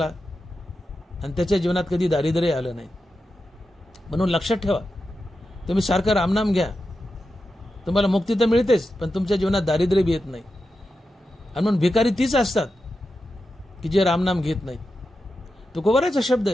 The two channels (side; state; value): both; normal; correlation 0.90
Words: आणि त्याच्या जीवनात कधी दारिद्र्य आलं नाही. म्हणून लक्षात ठेवा, तुम्ही सारखं रामनाम घ्या, तुम्हाला मुक्ती तर मिळतेच, पण तुमच्या जीवनात दारिद्र्य बी येत नाही. आणि म्हणून भिकारी तीच असतात की जे रामनाम घेत नाहीत. तुकोबराचा शब्द